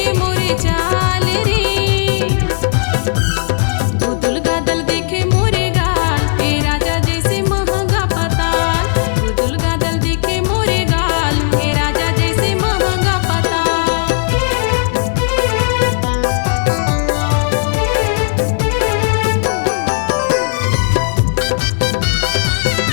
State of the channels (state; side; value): silent; right; 68 dB below the other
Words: मोरे चाल रे। गुदुल गादल दिखे मोरे गाल, हे राजा जैसे महंगा पताल। गुदुल गादल दिखे मोरे गाल, हे राजा जैसे महंगा पताल।